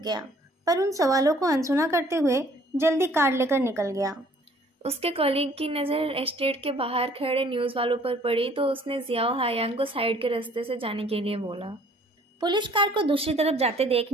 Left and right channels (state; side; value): normal; both; correlation 0.57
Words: पर उन सवालों को अनसुना करते हुए जल्दी कार लेकर निकल गया। उसके कलीग की नज़र एस्टेट के बाहर खड़े न्यूज़ वालों पर पड़ी तो उसने जियाओ हायांग को साइड के रास्ते से जाने के लिए बोला। पुलिस कार को दूसरी तरफ जाते देख